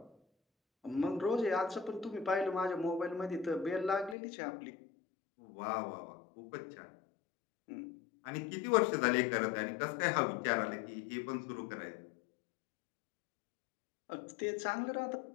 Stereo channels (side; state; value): right; drops out; at 4.2 s